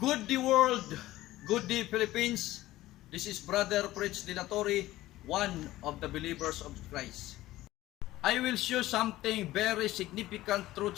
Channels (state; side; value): quieter; right; 16.2 dB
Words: Good day world, good day Philippines. This is Brother Prince Dilatori, one of the believers of Christ. I will show something very significant